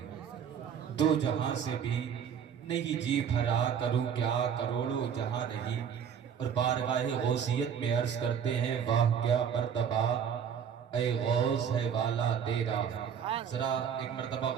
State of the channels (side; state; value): left; quieter; 7.9 dB